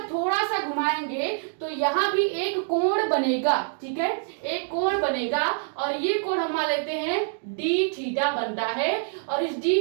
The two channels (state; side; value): silent; left; digital silence